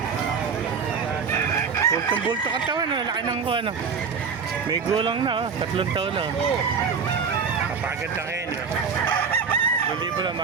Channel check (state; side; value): quieter; left; 5.9 dB